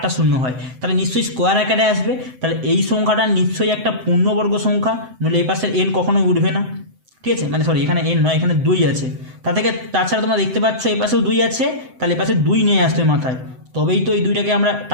শূন্য হয়, তাহলে নিশ্চয়ই স্কোয়ার আকারে আসবে। তাহলে এই সংখ্যাটা নিশ্চয়ই একটা পূর্ণবর্গ সংখ্যা, নইলে এই পাশের n কখনোই উঠবে না, ঠিক আছে। মানে সরি, এখানে n নয়, এখানে 2 আছে। তাছাড়া তোমরা দেখতে পাচ্ছ এই পাশেও 2 আছে, তাহলে এই পাশে 2 নিয়ে আসতে মাথায়, তবেই তো এই 2টাকে আমরা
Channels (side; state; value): left; late; 7.8 ms